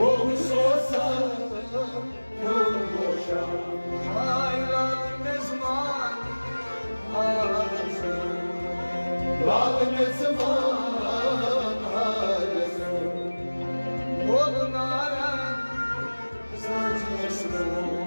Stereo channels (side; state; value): both; inverted; correlation -1.00